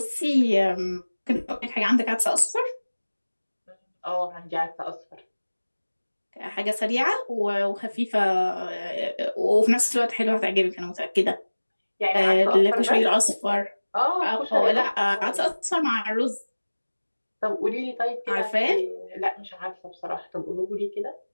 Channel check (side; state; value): both; inverted; correlation -1.00